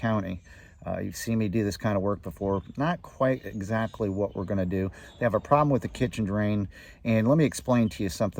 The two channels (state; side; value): identical; both; correlation 1.00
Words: You've seen me do this kind of work before. Not quite exactly what we're going to do. They have a problem with the kitchen drain, and let me explain to you